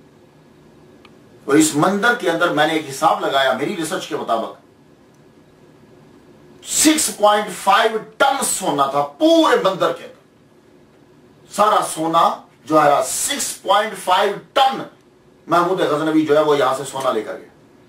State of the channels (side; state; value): both; identical; correlation 1.00